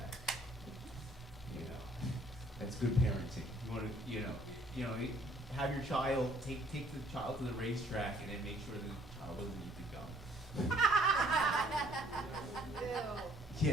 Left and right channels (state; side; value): normal; both; correlation 0.60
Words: You know, that's good parenting. You want to, have your child take the child to the racetrack, and then make sure the child doesn't eat the gum. Ew.